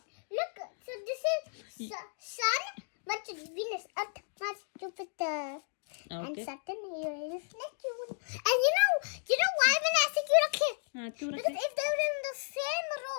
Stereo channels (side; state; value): right; silent; digital silence